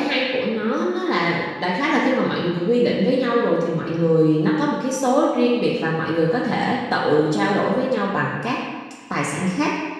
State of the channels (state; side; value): identical; both; correlation 1.00